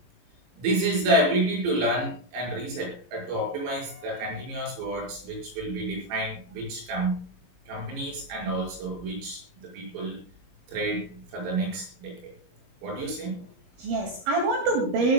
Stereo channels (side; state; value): left; late; 12 ms